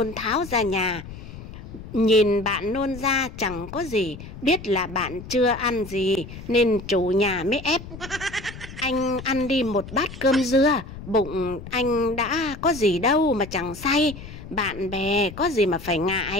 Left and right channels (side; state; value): left; noise; rumble, 13 dB below the sound